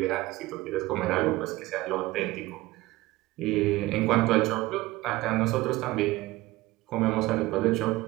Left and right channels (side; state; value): left; quieter; 19.0 dB